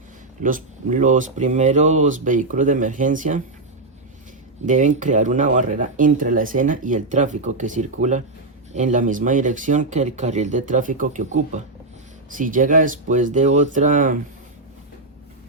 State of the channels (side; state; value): left; quieter; 3.1 dB